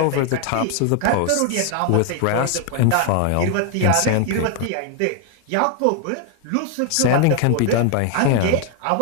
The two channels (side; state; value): both; different; correlation 0.01